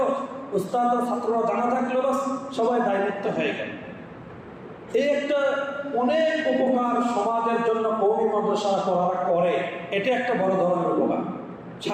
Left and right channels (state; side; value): identical; both; correlation 1.00